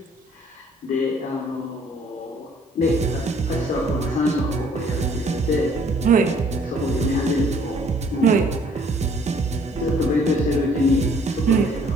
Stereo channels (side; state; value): both; normal; correlation 0.60